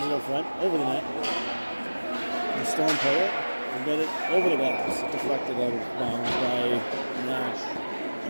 up front, over the net. The Storm play it and get it over the glass. Deflected out of bounds by Nash.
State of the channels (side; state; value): both; inverted; correlation -1.00